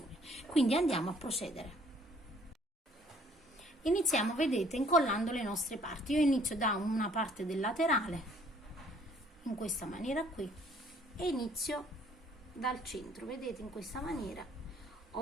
Quindi andiamo a procedere. Iniziamo, vedete, incollando le nostre parti. Io inizio da una parte del laterale in questa maniera qui e inizio dal centro, vedete, in questa maniera,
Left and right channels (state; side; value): normal; both; correlation 0.60